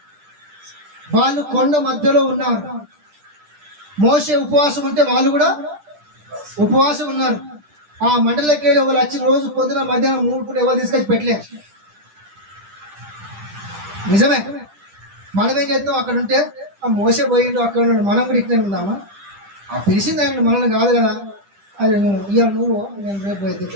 వాళ్ళు కొండ మధ్యలో ఉన్నారు. మోషే ఉపవాసం ఉంటే వాళ్ళు కూడా ఉపవాసం ఉన్నారు. ఆ మండలకి వెళ్ళి వాళ్ళు వచ్చి రోజు పొద్దున మధ్యాహ్నం 3 పూట ఎవరు తీసుకొచ్చి పెట్టలే. నిజమే. మనం ఏం చేస్తాం? అక్కడ ఉంటే ఆ మోసే పోయిండు, అక్కడ ఉన్నాడు, మనం కూడా ఇట్లనే ఉందామా? ఆ పిలిచింది ఆయన మనల్ని కాదు కదా, అది ఇవాళ నువ్వు నేను రేపు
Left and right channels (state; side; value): late; left; 10 ms